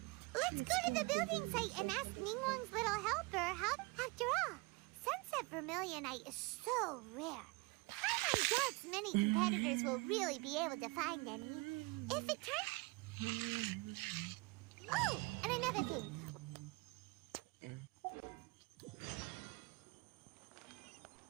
let's go to the building site and ask Ningguang's little helper how... After all, sunset vermilionite is so rare. Paimon doubts many competitors will really be able to find any. If it turns... Oh, and another thing.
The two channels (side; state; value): left; quieter; 25.5 dB